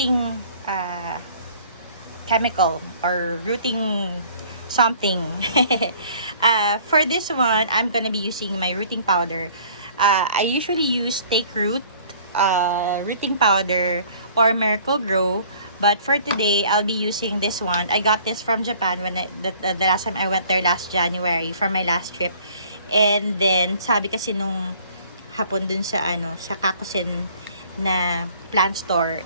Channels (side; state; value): both; inverted; correlation -0.54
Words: chemical or rooting something. For this one, I'm gonna be using my rooting powder. I usually use Take Root rooting powder or Miracle Grow, but for today I'll be using this one. I got this from Japan when the last time I went there last January for my last trip. And then sabi kasi nung hapon dun sa sa Kakusin na plant